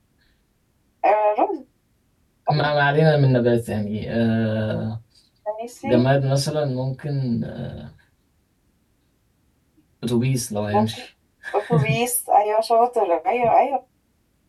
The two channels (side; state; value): both; identical; correlation 1.00